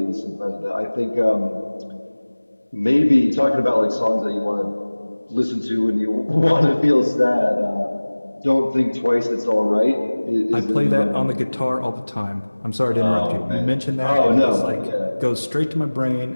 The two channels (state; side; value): inverted; both; correlation -1.00